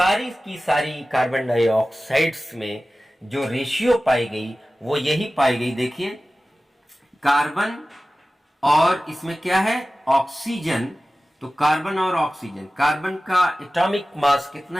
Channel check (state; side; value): normal; both; correlation 0.96